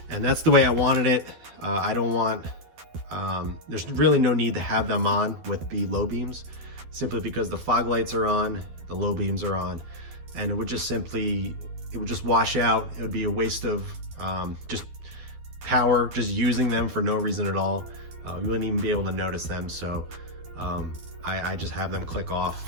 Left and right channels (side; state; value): left; late; 12 ms